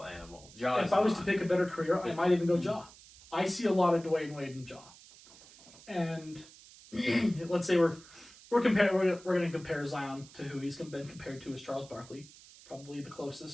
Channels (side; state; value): right; noise; hiss, 21 dB below the sound